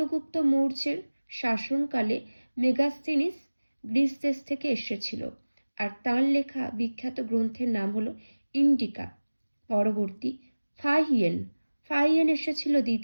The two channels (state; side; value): inverted; both; correlation -1.00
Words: মৌর্যের শাসনকালে মেগাস্তিনিস গ্রিস দেশ থেকে এসেছিল, আর তাঁর লেখা বিখ্যাত গ্রন্থের নাম হলো ইন্ডিকা। পরবর্তী, ফাহিয়েন এসেছিল